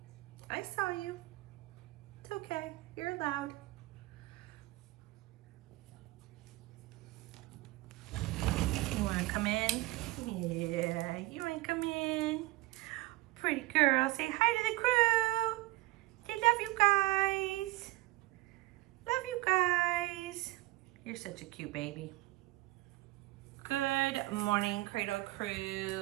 I saw you. It's okay, you're allowed. You wanna come in? Yeah, you wanna come in? Pretty girl, say hi to the crew. They love you guys. Love you guys. You're such a cute baby. Good morning, Cradle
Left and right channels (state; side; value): quieter; left; 19.3 dB